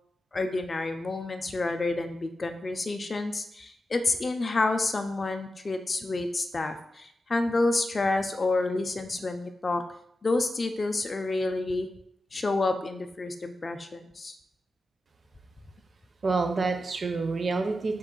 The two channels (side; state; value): both; normal; correlation 0.91